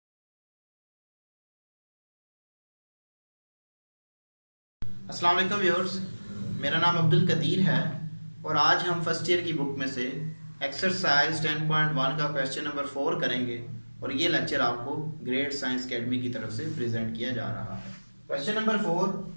अस्सलाम वालेकुम viewers, मेरा नाम अब्दुल कदीर है और आज हम फर्स्ट ईयर की बुक में से एक्सरसाइज 10.1 का क्वेश्चन नंबर 4 करेंगे और ये लेक्चर आपको ग्रेड साइंस अकेडमी की तरफ से प्रेजेंट किया जा रहा है। Question number 4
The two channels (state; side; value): inverted; both; correlation -1.00